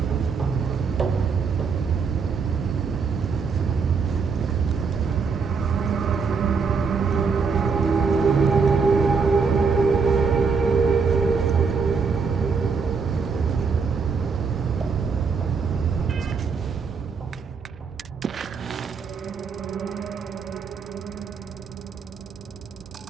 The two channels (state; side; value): quieter; left; 5.3 dB